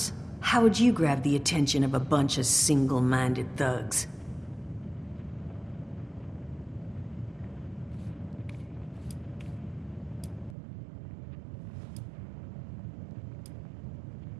How would you grab the attention of a bunch of single-minded thugs?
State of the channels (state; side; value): drops out; left; at 10.6 s